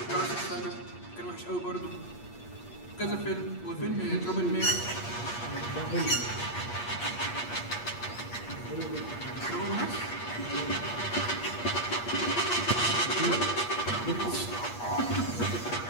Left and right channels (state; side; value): late; right; 8.4 ms